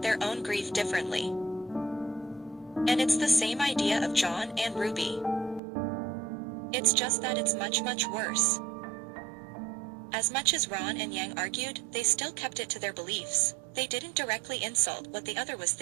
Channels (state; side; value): drops out; left; at 5.6 s